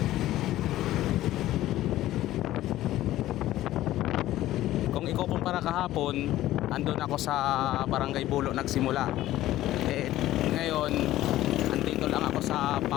Kung ikukumpara kahapon, andun ako sa Barangay Bulo nagsimula. Ngayon, andito lang ako sa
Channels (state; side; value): quieter; right; 14.7 dB